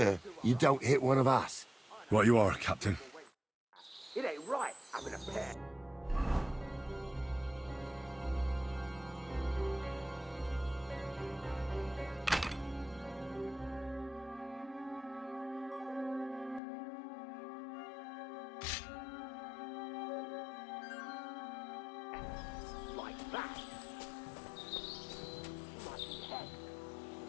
you don't hit one of us. Right you are, Captain. It ain't right having a pet. Like that.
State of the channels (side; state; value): right; drops out; at 16.6 s